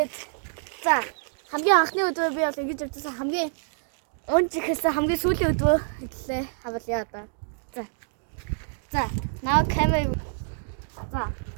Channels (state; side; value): silent; left; digital silence